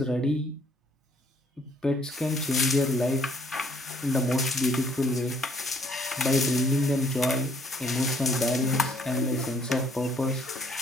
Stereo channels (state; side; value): normal; both; correlation 0.64